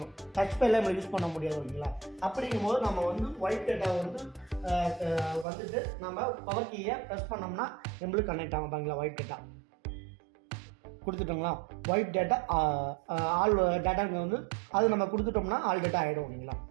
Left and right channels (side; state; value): left; drops out; at 5.5 s